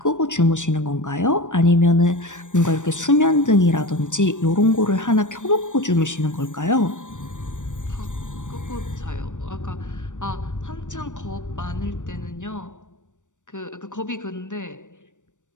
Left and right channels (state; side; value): late; right; 0.86 ms